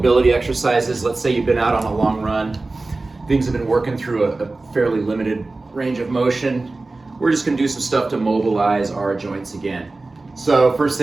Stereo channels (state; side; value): quieter; left; 3.3 dB